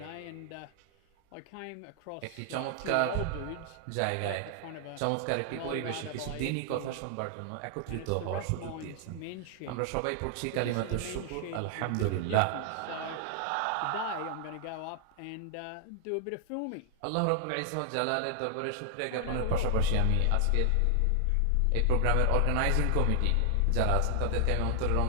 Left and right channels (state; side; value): different; both; correlation 0.00